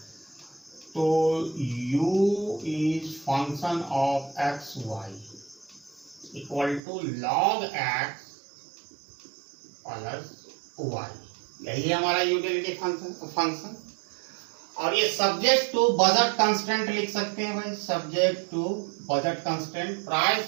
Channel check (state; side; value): drops out; left; at 6.8 s